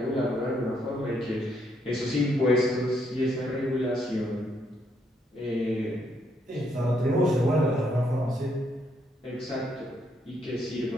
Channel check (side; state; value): both; normal; correlation 0.74